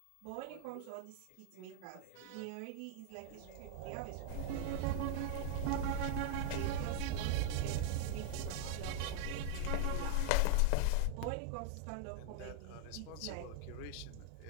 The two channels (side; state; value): both; different; correlation 0.00